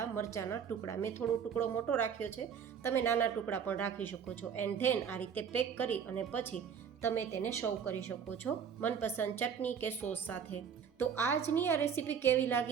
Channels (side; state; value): left; quieter; 7.4 dB